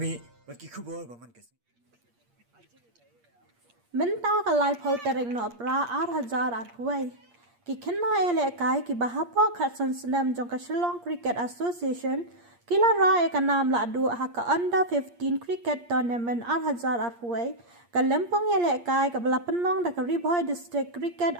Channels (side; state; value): left; late; 8.5 ms